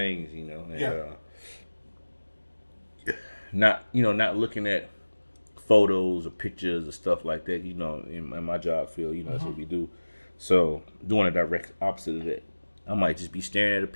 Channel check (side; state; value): both; inverted; correlation -1.00